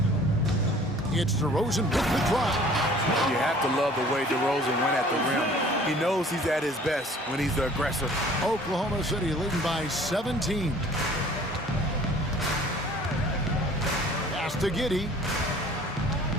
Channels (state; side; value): normal; both; correlation 0.51